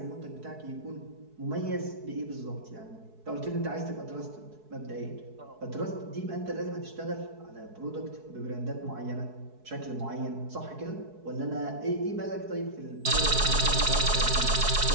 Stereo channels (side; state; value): left; late; 4.7 ms